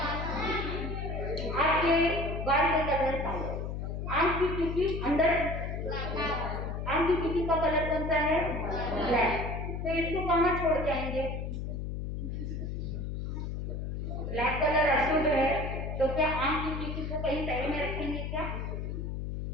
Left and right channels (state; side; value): noise; left; hum, 4 dB below the sound